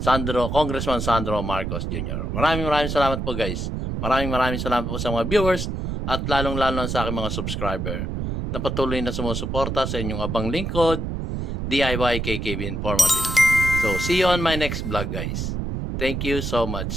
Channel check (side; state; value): right; noise; rumble, 3 dB below the sound